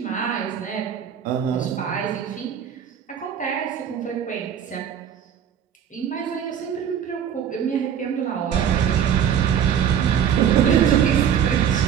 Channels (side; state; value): left; quieter; 8.8 dB